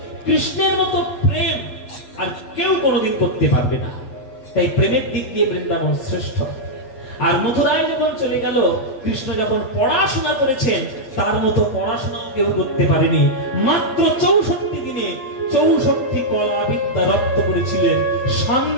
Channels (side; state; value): right; late; 7.9 ms